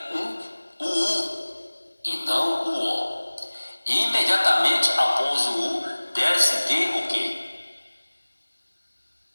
o U e não o O. E imediatamente após o U deve-se ter o quê?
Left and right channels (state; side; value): inverted; both; correlation -1.00